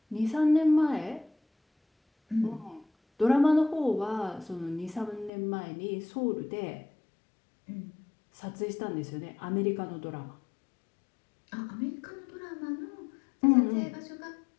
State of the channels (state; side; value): drops out; right; at 5.3 s